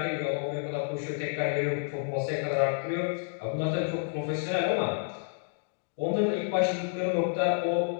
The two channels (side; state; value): right; silent; digital silence